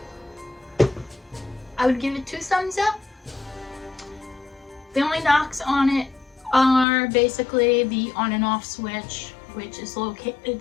I would give it 2 thumbs up. The only knocks on it are basically the on and off switch, which is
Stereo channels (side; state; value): right; drops out; at 6.9 s